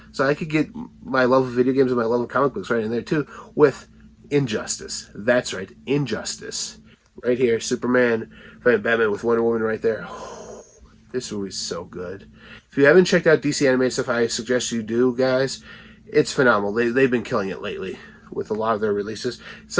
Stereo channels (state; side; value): identical; both; correlation 1.00